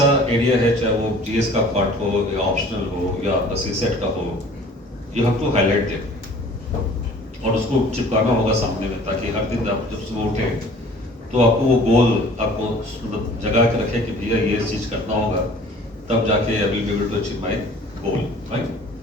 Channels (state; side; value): normal; both; correlation 0.49